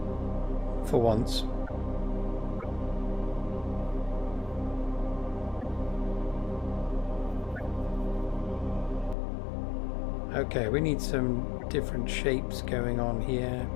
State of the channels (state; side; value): drops out; right; at 9.2 s